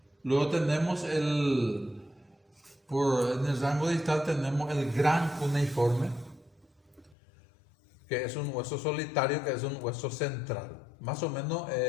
Luego tenemos en el rango distal tenemos el gran cuneiforme, que es un hueso solitario, que es un hueso central, más o menos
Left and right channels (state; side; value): drops out; right; at 7.2 s